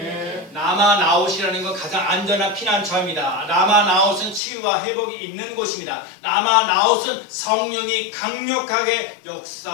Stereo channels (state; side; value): drops out; right; at 4.4 s